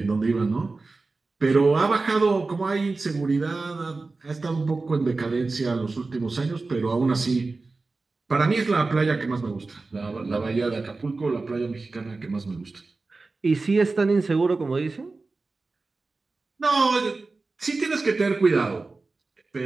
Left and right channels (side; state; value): left; quieter; 3.7 dB